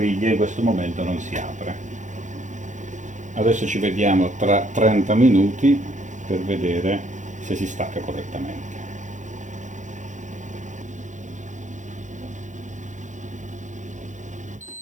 in questo momento non si apre. Adesso ci vediamo tra 30 minuti per vedere se si stacca correttamente.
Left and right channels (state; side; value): late; left; 0.36 ms